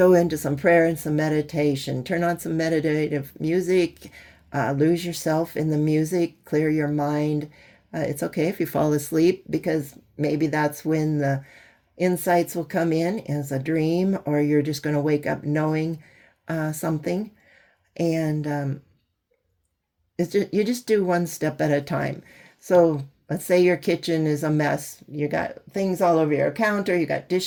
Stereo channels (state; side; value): identical; both; correlation 1.00